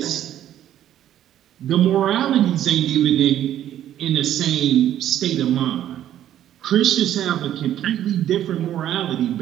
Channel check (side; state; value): left; quieter; 11.6 dB